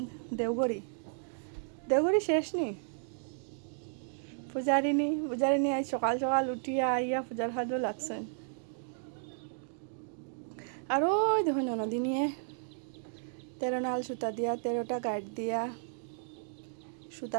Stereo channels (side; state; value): left; silent; digital silence